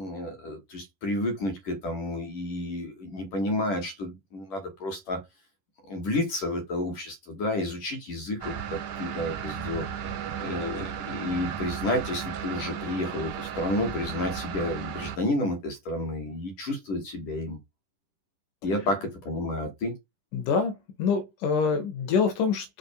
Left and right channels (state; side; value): late; right; 10 ms